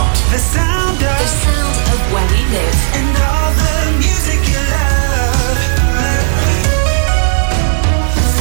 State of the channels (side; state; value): left; silent; digital silence